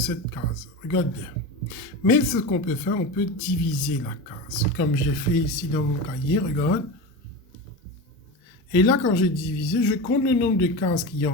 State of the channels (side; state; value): both; normal; correlation 0.24